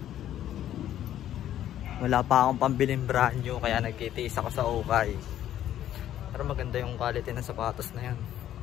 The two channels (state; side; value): quieter; right; 11.7 dB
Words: Wala pa akong pambiling brand new kaya nagtitiis ako sa ukay. Pero maganda yung quality ng sapatos na yan.